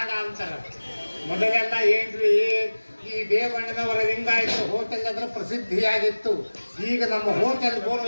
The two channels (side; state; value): both; inverted; correlation -1.00